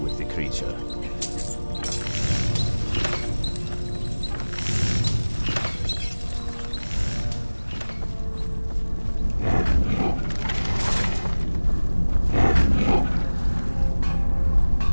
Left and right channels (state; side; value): inverted; both; correlation -1.00